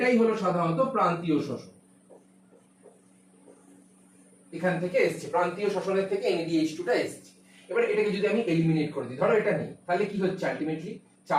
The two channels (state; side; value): identical; both; correlation 1.00